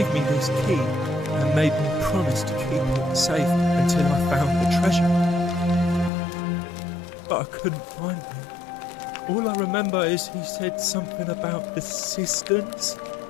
me this key and made me promise to keep it safe until I found the treasure. But I couldn't find it. All I remember is he said something about the cisterns,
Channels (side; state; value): right; drops out; at 6.1 s